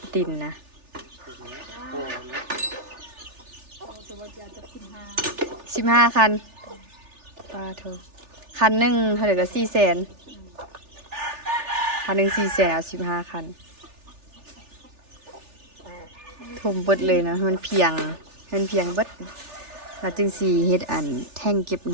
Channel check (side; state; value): left; late; 3.4 ms